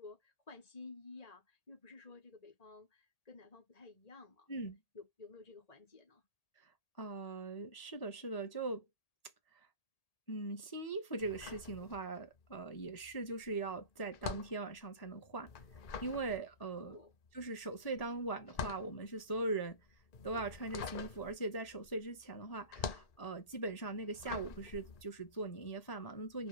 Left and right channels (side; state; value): right; late; 1.8 ms